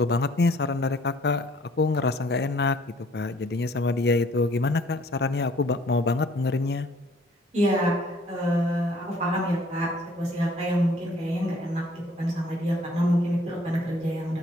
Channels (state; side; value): normal; both; correlation 0.58